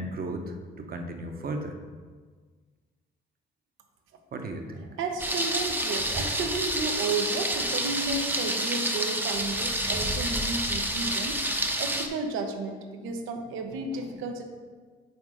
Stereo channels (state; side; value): normal; both; correlation -0.07